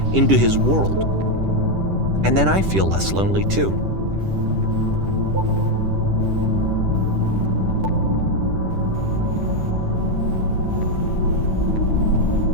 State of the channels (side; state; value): left; late; 10 ms